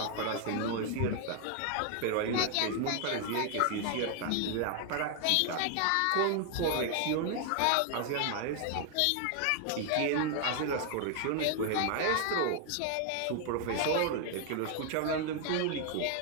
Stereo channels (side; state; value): both; different; correlation 0.00